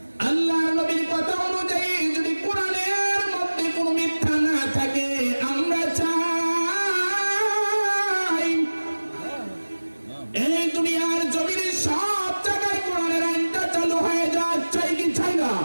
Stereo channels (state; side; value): inverted; both; correlation -1.00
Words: আল্লাহর নবীর কথা অনুযায়ী যদি কোরআনের মধ্যে কোনো মিথ্যা না থাকে, আমরা চাই এই দুনিয়ার জমিনের সব জায়গায় কোরআনের আইনটা চালু হয়ে যাক। চাই কি চাই না?